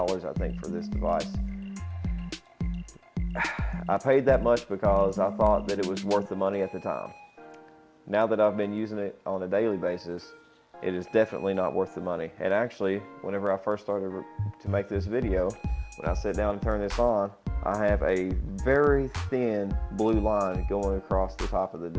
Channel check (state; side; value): identical; both; correlation 1.00